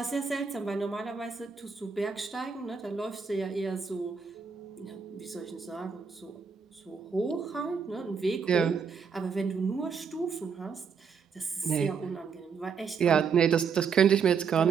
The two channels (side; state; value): left; quieter; 6.1 dB